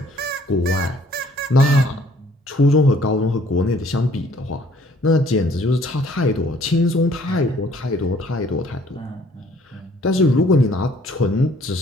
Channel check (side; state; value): both; normal; correlation 0.59